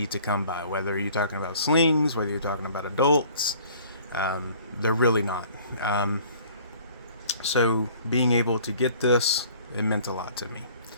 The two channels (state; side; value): inverted; both; correlation -0.52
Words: to come by, whether you're talking about slings, whether you're talking about adults. They're really not. So being able to get this, it meant a lot to me.